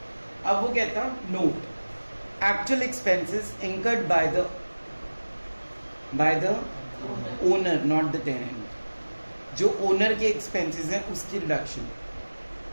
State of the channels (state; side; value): inverted; both; correlation -1.00